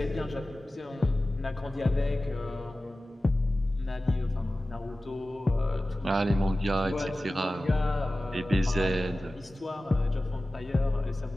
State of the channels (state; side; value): normal; both; correlation 0.96